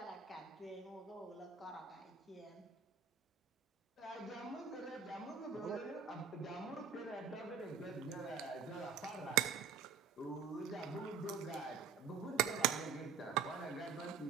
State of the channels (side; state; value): left; quieter; 6.4 dB